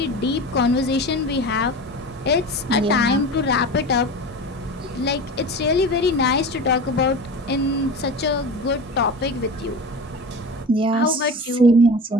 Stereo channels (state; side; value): normal; both; correlation 0.31